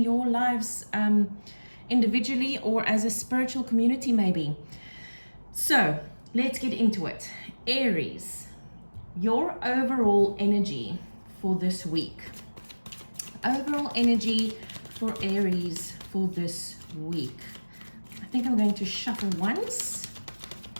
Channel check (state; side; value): inverted; both; correlation -1.00